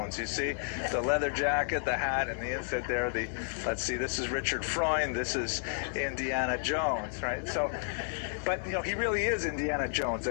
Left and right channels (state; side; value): silent; right; digital silence